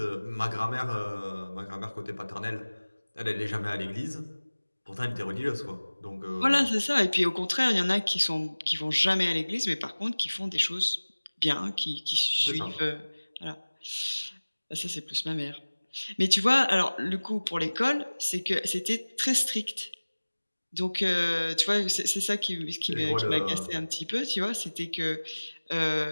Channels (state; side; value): inverted; both; correlation -1.00